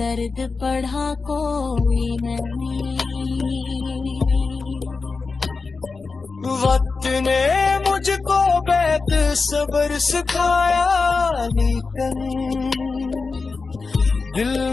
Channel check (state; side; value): quieter; right; 4.3 dB